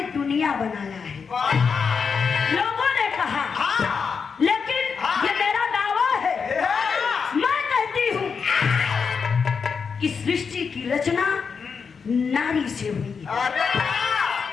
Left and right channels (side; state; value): right; quieter; 5.8 dB